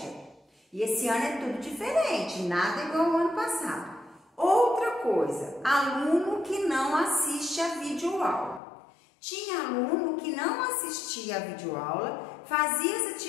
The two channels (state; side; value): drops out; right; at 8.6 s